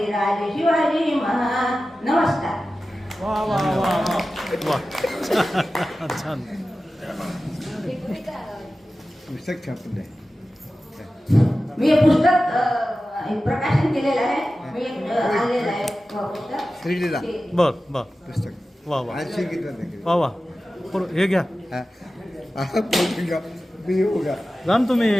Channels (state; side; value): normal; both; correlation 0.95